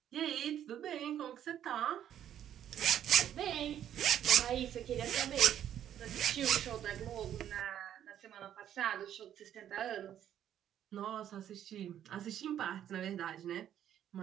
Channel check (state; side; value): quieter; left; 10.5 dB